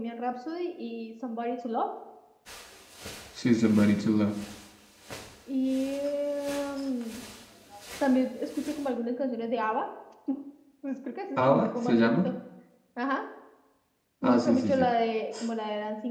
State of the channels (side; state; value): both; identical; correlation 1.00